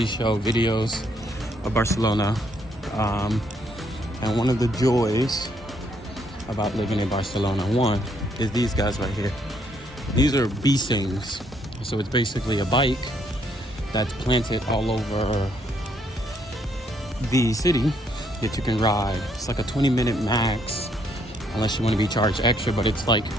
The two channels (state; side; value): normal; both; correlation 0.70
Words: show videos of Barcelona, and one of the joys about living in Barcelona, one, is these guys right here. These are bicings, so it's basically a bike that's planted all over the city that you can ride. It's like a 20-minute max, unless you want to be charged extra, but it's like